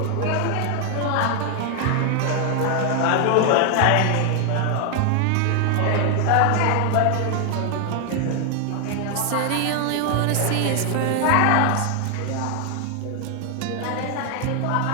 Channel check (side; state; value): both; different; correlation 0.00